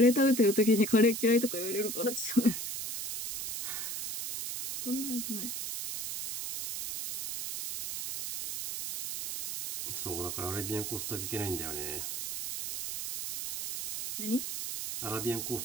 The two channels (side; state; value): right; noise; hiss, 5 dB below the sound